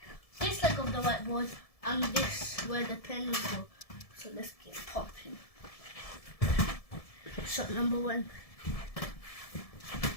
this leg of the whiteboard, and this where the pen will go. So let's get popping. Shot number 1.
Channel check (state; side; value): late; right; 1.7 ms